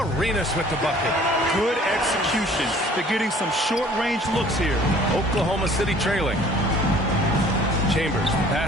with the bucket. Good execution. They're getting some short-range looks here. Oklahoma City trailing. Chambers,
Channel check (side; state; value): both; normal; correlation 0.53